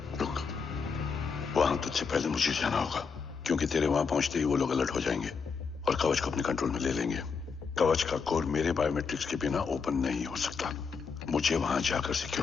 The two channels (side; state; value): right; quieter; 5.5 dB